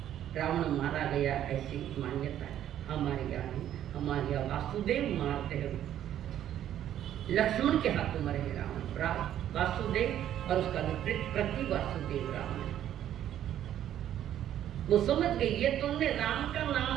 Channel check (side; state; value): left; quieter; 11.2 dB